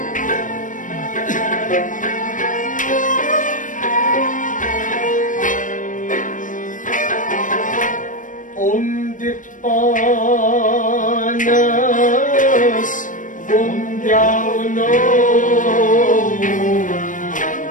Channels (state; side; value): late; right; 0.38 ms